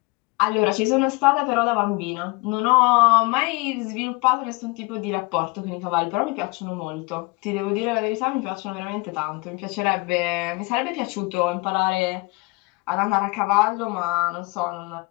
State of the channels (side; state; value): right; quieter; 27.0 dB